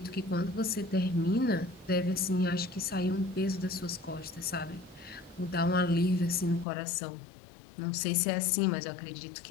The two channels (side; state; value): right; drops out; at 6.7 s